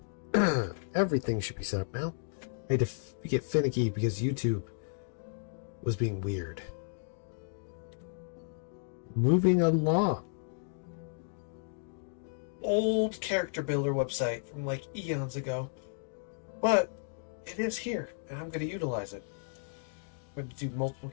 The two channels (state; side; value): silent; right; digital silence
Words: Everything should be set up now. I had to get finicky because YouTube was being weird. Moving along. Old character builder website from like eons ago. But it is here, and I'm going to utilize it. I'm going to do multiple